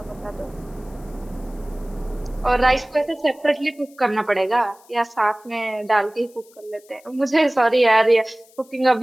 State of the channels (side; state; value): left; noise; hiss, 28 dB below the sound